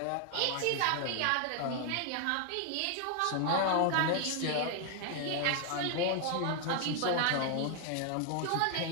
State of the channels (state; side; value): different; both; correlation 0.00